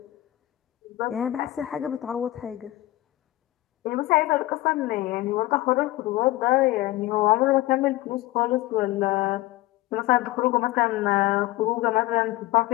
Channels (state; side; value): quieter; right; 17.3 dB